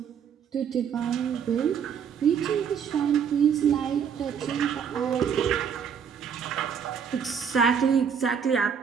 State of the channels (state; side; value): quieter; left; 7.4 dB